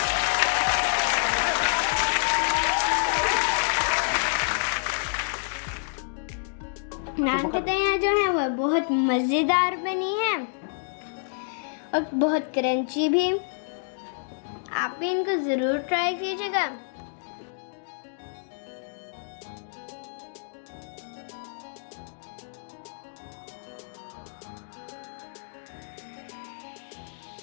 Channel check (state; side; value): silent; right; digital silence